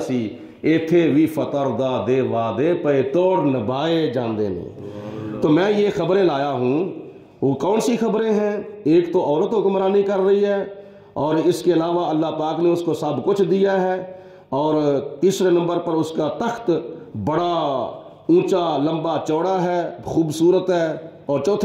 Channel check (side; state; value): both; identical; correlation 1.00